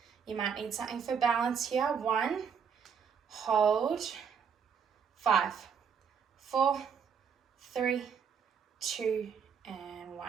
You might need something for balance here. 1, hold, 5, 4, 3, 2, and 1.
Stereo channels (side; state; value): left; quieter; 6.9 dB